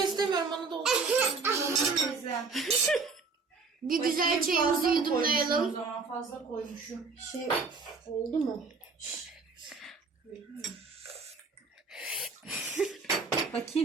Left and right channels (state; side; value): quieter; left; 4.5 dB